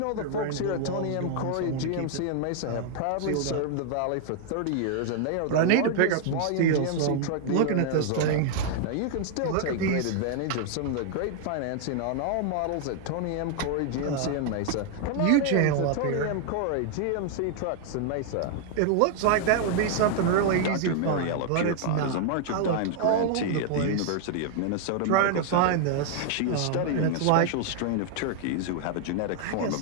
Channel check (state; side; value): different; both; correlation 0.00